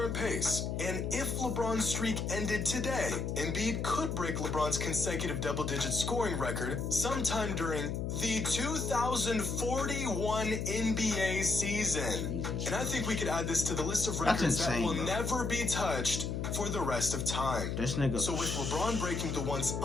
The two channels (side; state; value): left; noise; hum, 2 dB below the sound